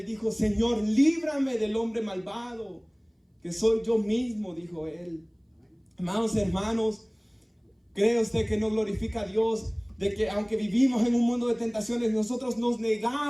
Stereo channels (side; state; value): both; identical; correlation 1.00